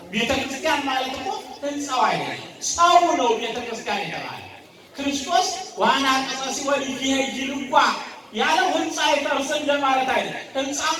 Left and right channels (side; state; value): both; identical; correlation 1.00